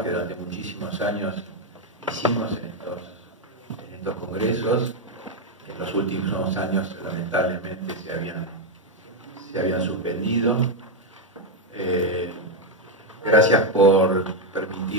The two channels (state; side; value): normal; both; correlation 0.04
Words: que durante muchísimos años hicimos en estos congresos. En los últimos años, lamentablemente, se habían suspendido. Gracias por